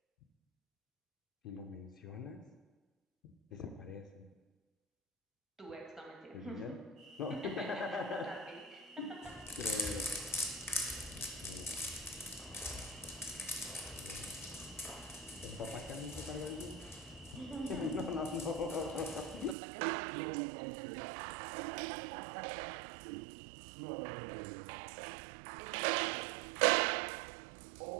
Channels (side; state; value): left; drops out; at 19.6 s